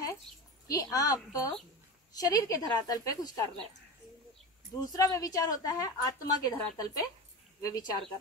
कि आप शरीर के धरातल पे कुछ कर रहे हो। दूसरा व्यभिचार होता है आत्मा के धरातल पे व्यभिचार कर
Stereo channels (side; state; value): both; normal; correlation 0.26